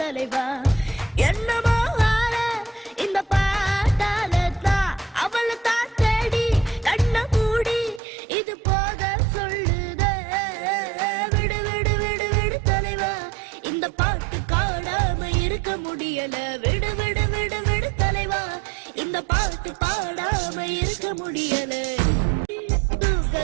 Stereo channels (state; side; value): drops out; left; at 8.0 s